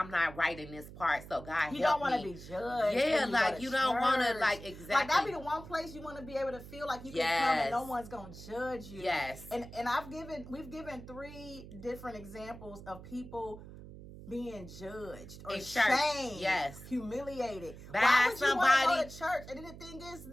not right in this part, so God help me. You don't want to be judged. Yeah, like you don't want to like exactly. Like that be the one place you want to be able to feel like you can come and no one's gonna judge you. Yes. And we've given 3 different examples of people being judged or shamed, humiliated. Why would you want to go to church? And then the thing is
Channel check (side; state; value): right; noise; hum, 15 dB below the sound